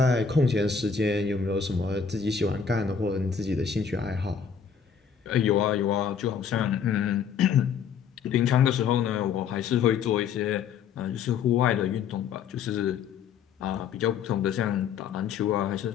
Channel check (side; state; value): right; quieter; 6.8 dB